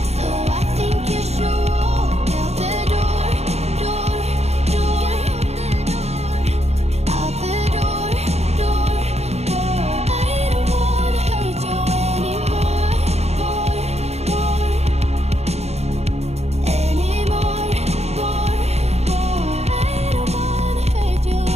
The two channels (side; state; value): left; late; 0.31 ms